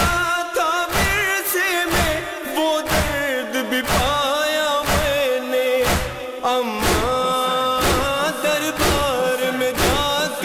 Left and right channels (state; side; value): identical; both; correlation 1.00